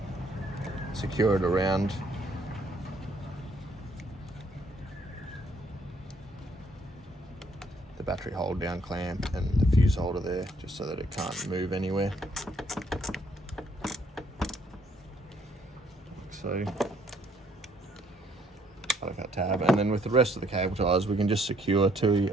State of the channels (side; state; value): both; normal; correlation 0.66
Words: secure it around the battery hold down clamp and the fuse holder there, just so that it can't move anywhere. So, out that tab, and then with the rest of the cable ties, we can just secure to